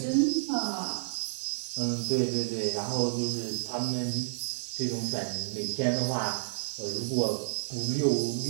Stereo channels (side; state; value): left; silent; digital silence